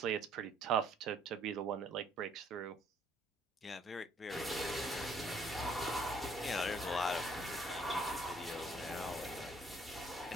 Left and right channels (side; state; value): both; normal; correlation 0.63